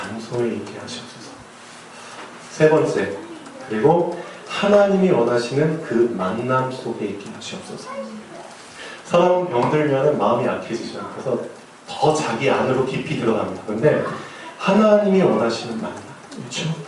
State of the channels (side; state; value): both; identical; correlation 1.00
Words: 있게 하시옵소서. 세 번째, 그리고 하나님이 원하시는 그 만남 속에 있게 하시옵소서. 사람은 병들면 마음이 약해지죠. 그래서 더 자기 안으로 깊이 들어갑니다. 그런데 하나님이 원하시는 만남, 그렇죠?